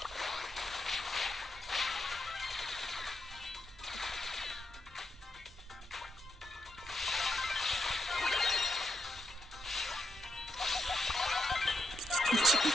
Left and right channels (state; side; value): normal; both; correlation 0.81